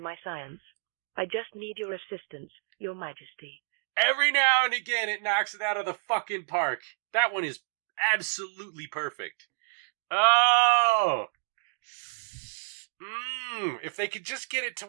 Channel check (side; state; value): left; silent; digital silence